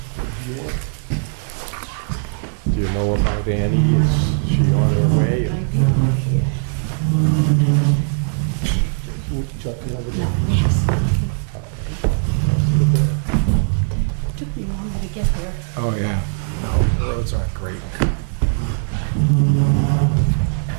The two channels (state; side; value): silent; left; digital silence